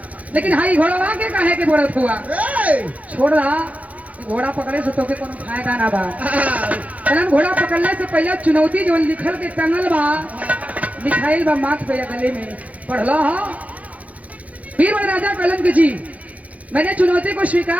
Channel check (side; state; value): left; late; 0.069 ms